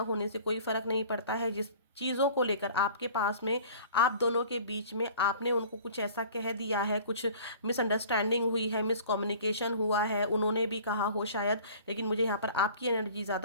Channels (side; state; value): both; inverted; correlation -0.46